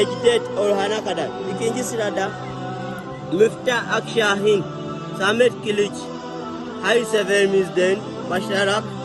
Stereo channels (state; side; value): identical; both; correlation 1.00